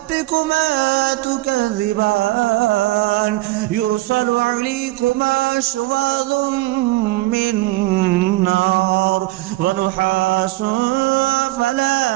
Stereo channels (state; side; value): quieter; left; 19.1 dB